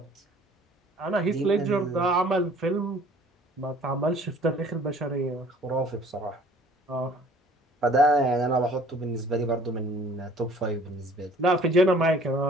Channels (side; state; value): both; normal; correlation 0.52